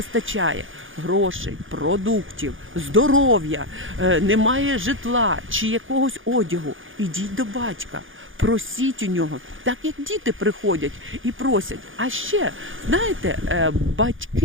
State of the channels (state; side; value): late; left; 0.58 ms